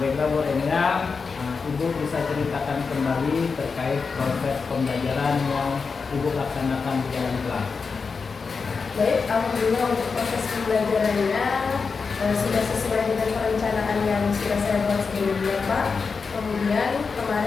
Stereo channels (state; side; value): quieter; right; 5.0 dB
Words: baiklah Bu Enya, Ibu bisa ceritakan kembali terkait proses pembelajaran yang Ibu laksanakan di dalam kelas. Baik, alhamdulillah untuk proses pembelajarannya sudah sesuai dengan perencanaan yang sudah saya buat sebelumnya Pak. Kemudian